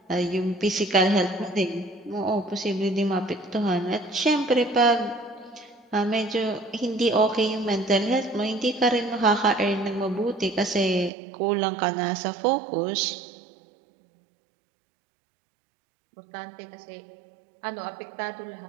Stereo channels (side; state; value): left; drops out; at 11.1 s